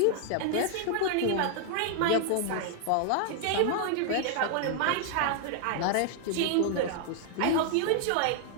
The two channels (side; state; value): both; different; correlation 0.00